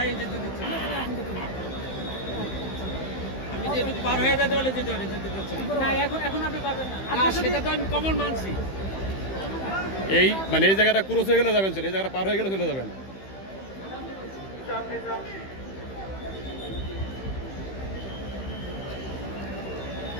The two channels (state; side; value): late; right; 15 ms